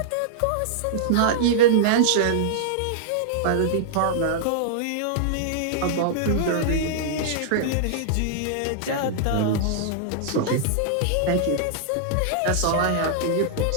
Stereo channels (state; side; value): different; both; correlation -0.02